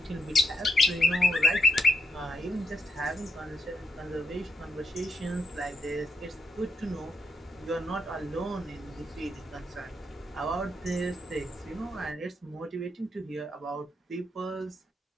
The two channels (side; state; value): both; normal; correlation 0.78